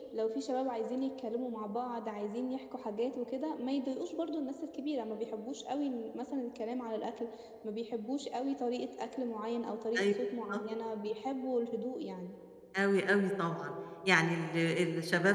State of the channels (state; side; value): identical; both; correlation 1.00